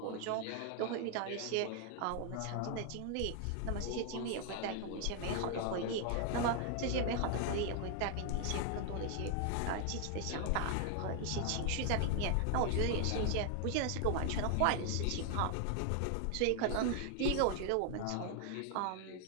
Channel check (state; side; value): different; both; correlation 0.00